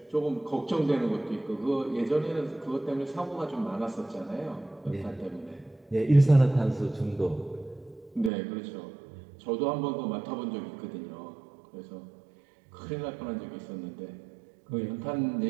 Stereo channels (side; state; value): left; drops out; at 8.3 s